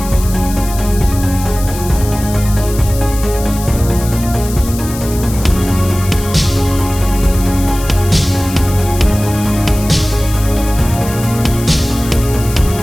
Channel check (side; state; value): left; noise; hiss, 12 dB below the sound